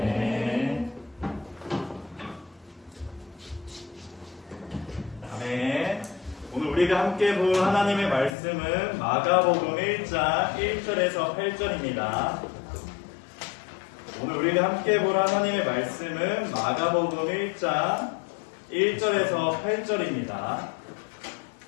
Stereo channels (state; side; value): drops out; right; at 8.3 s